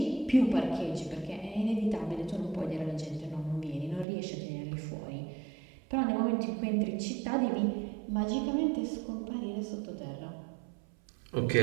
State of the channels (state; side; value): drops out; left; at 4.0 s